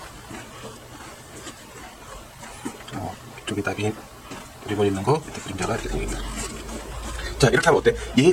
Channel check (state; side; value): identical; both; correlation 1.00